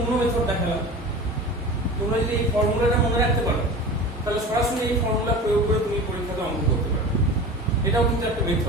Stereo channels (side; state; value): both; normal; correlation 0.35